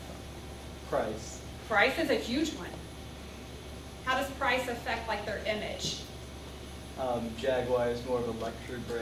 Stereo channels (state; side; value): identical; both; correlation 1.00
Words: Price. Price is a huge one. How does price affect like their image? Jaguar is more of a luxury